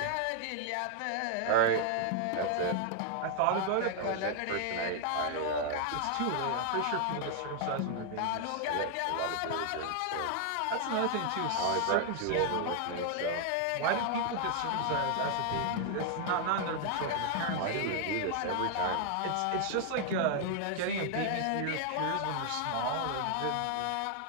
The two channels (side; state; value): both; different; correlation 0.00